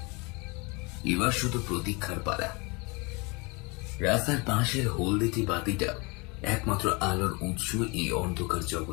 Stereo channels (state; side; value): quieter; right; 28.4 dB